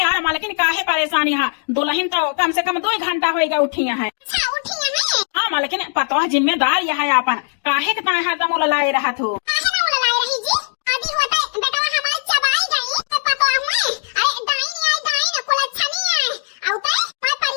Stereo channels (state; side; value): silent; right; digital silence